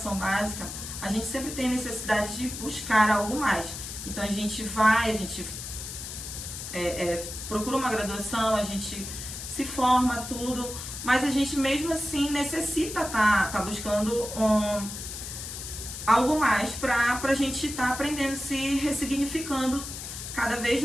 básica, a gente sempre tem necessidade de buscar algo mais. Então, a gente procura uma graduação, a gente se forma, tudo, mas a gente mesmo assim necessita tá buscando algo mais para a gente estar aprendendo, se ressignificando cada vez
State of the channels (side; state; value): left; noise; hiss, 8 dB below the sound